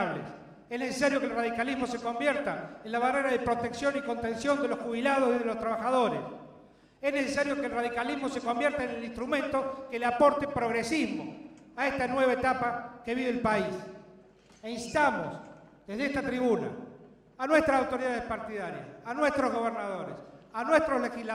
Es necesario que el radicalismo se convierta en la barrera de protección y contención de los jubilados y de los trabajadores. Es necesario que el radicalismo se convierta en el instrumento que le aporte progresismo a esta nueva etapa que vive el país. E instamos desde esta tribuna a nuestras autoridades partidarias, a nuestros gobernadores, a nuestros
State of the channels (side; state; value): both; identical; correlation 1.00